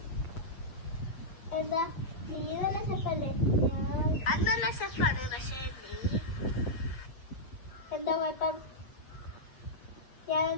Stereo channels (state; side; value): late; right; 7.8 ms